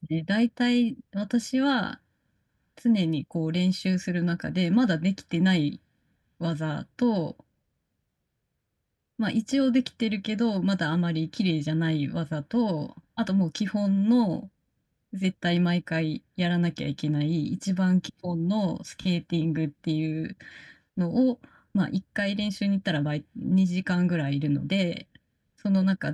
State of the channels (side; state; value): both; identical; correlation 1.00